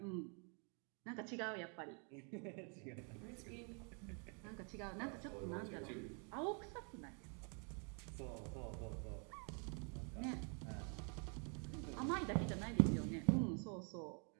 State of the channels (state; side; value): quieter; left; 38.3 dB